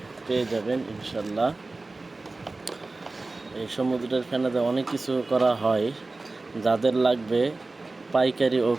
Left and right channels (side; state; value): left; quieter; 3.3 dB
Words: পেয়ে যাবেন ইনশাল্লাহ। এই সমুদ্রের ফেনাতে অনেক কিছু করা হয়। যাদের লাগবে পাইকারি ও